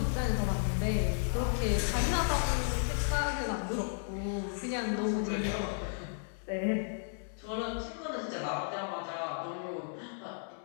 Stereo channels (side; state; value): right; silent; digital silence